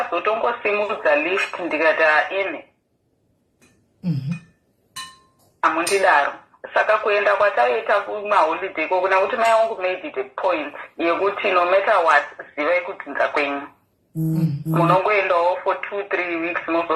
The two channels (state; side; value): identical; both; correlation 1.00